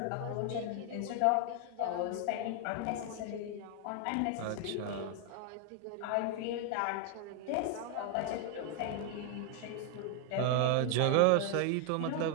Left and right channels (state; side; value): different; both; correlation 0.00